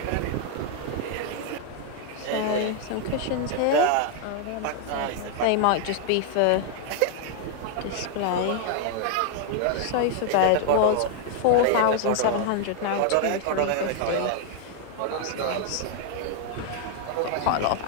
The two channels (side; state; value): both; different; correlation 0.00